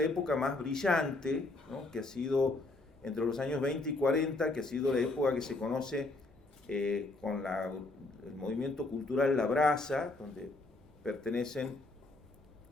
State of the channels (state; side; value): quieter; right; 3.0 dB